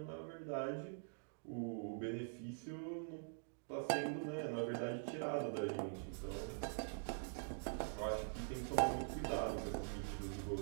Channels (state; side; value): silent; left; digital silence